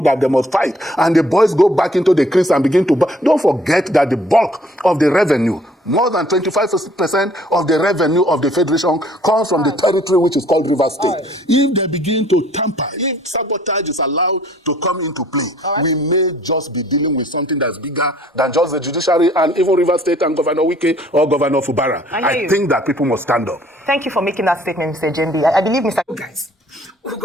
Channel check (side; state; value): both; normal; correlation 0.58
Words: that they must fight, and the boys go back into the crease and begin to don't forget that the bulk of the revenue, more than 25% of the revenue of the federation, comes from the territory which is called Rivers State. If they begin to tamper, if sabotage is allowed to come into play, we may just be dealing with something that's bigger than just the judiciary and even Rivers State and Governor Wike or Governor Fubara. I think that people must stand up. Thank you for making that statement, Mr. Jembi. I believe Mr. Guys,